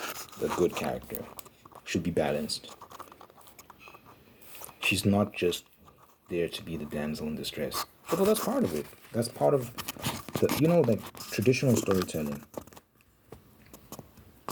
the good character. Should be balanced. She's not just there to be the damsel in distress. Although that's part of it. That's part of the, like traditional storytelling.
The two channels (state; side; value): identical; both; correlation 1.00